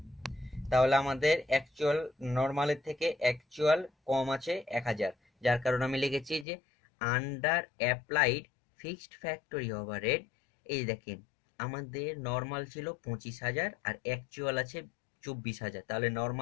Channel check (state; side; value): drops out; right; at 6.5 s